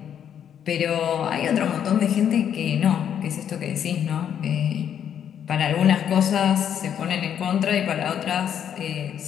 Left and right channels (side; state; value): right; quieter; 9.0 dB